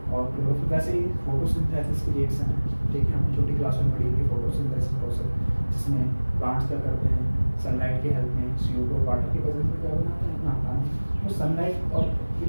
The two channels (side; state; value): both; inverted; correlation -1.00